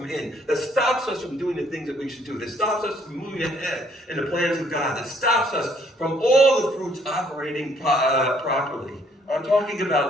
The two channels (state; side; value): normal; both; correlation 0.64